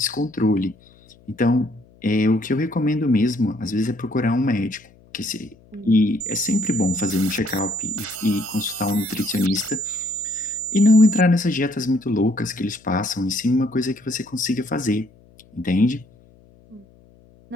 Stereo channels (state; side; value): noise; left; hum, 28 dB below the sound